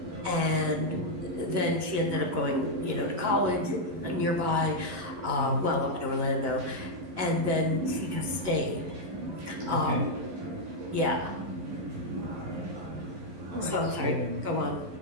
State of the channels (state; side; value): late; left; 11 ms